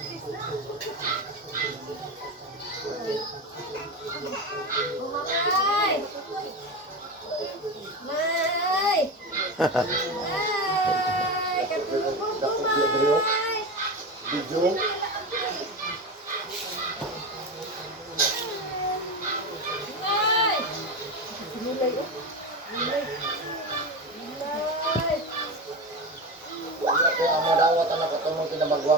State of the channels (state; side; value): normal; both; correlation 0.22